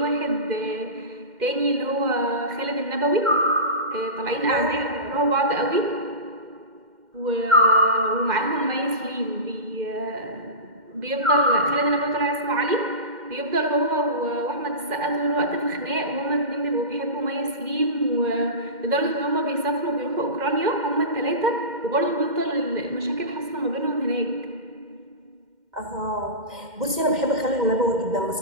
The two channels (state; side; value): late; left; 2.1 ms